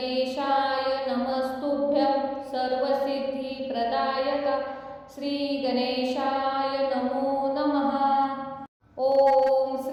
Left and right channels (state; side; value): identical; both; correlation 1.00